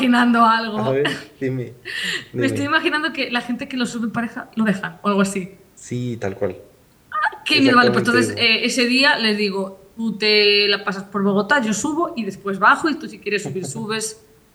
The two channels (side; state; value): both; identical; correlation 1.00